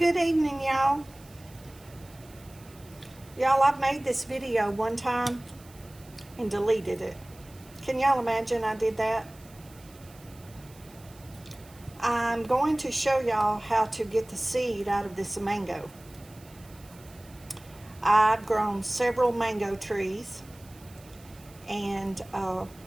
evening, y'all. Y'all, I've made this video one time and deleted it. Can y'all imagine I did that? I'm going to show y'all how to get the seed out of this mango. I've grown several mango trees, and I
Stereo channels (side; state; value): right; noise; hiss, 24 dB below the sound